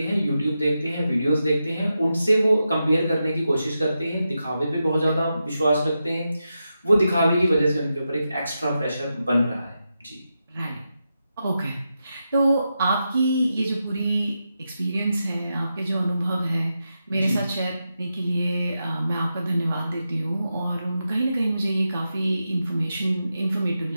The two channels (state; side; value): inverted; both; correlation -0.88